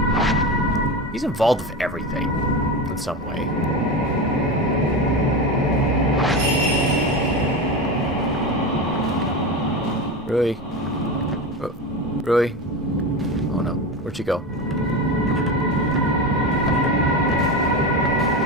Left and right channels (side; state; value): both; normal; correlation 0.22